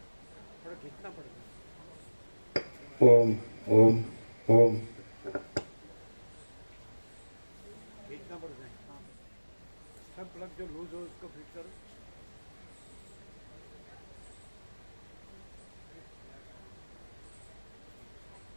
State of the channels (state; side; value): inverted; both; correlation -1.00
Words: थोड़ा खींचना पड़ेगा. ओम ओम ओम खींचना पड़ता है. सब प्लग जो लूज हो उसको फिट करो.